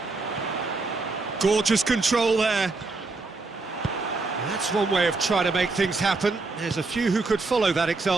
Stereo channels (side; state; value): left; quieter; 3.7 dB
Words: Gorgeous control there. That's one way of trying to make things happen. There's a few who could follow that